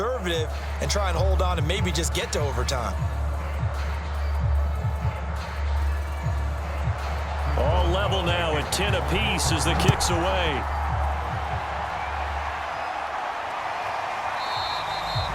and try and hold on and maybe just get to overtime? All level now at 10 apiece as the kick's away.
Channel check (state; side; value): identical; both; correlation 1.00